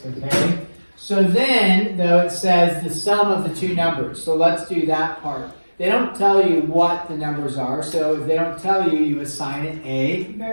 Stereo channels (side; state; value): both; inverted; correlation -1.00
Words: okay? So then, though, it says the sum of the two numbers. So let's do that part. They don't tell you what the numbers are, so if they don't tell you, you assign it a